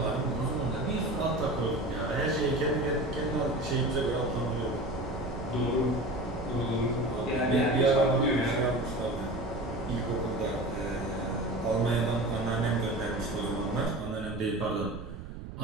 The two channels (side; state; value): right; noise; rumble, 10 dB below the sound